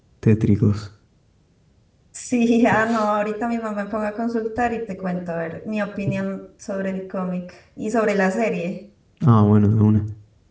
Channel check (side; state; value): both; identical; correlation 1.00